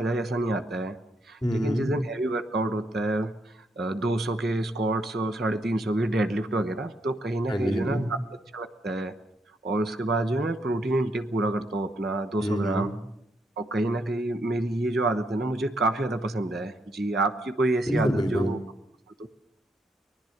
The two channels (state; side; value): normal; both; correlation 0.76